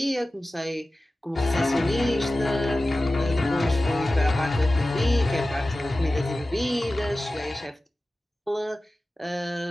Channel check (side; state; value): both; normal; correlation 0.95